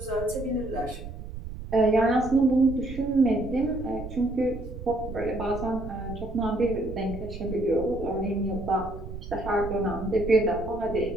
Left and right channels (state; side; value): noise; right; rumble, 10 dB below the sound